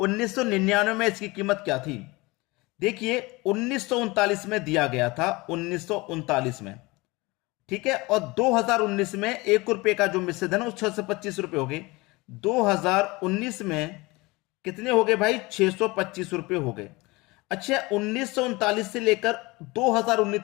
में इसकी कीमत क्या थी? देखिए 1939 में दिया गया था, 1939 में। ठीक है। और 2019 में 1 रुपए का जो मिश्र धन, वो 625 रुपए हो गए। 2019 में कितने हो गए भाई? 625 रुपए हो गए। अच्छा, 1939 से लेकर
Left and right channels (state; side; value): quieter; right; 23.2 dB